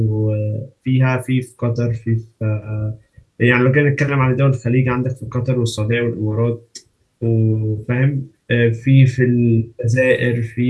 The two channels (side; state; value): both; identical; correlation 1.00